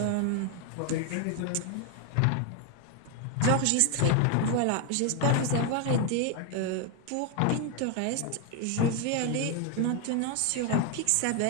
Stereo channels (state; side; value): different; both; correlation 0.01